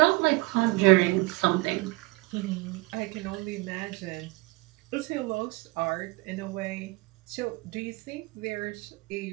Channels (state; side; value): quieter; left; 23.4 dB